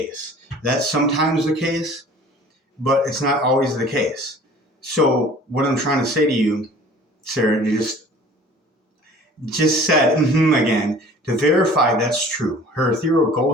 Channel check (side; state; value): both; normal; correlation 0.47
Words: That's sometimes the case, but it's not always the case. So what I'm trying to say to you, Sarah, you just said again, to verify that's true. Her ethereal